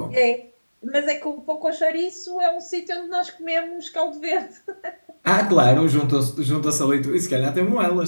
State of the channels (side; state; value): both; inverted; correlation -1.00